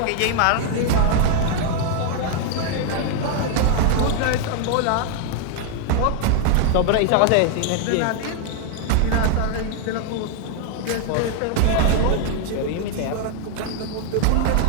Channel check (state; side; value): different; both; correlation 0.00